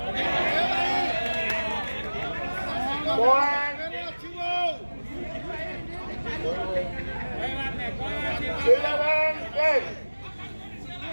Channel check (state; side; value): inverted; both; correlation -1.00